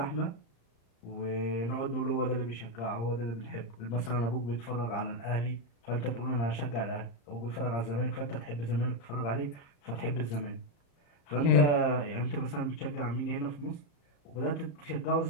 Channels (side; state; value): right; late; 35 ms